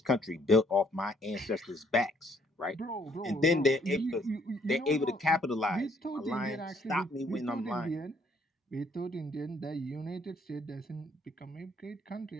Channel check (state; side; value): normal; both; correlation 0.65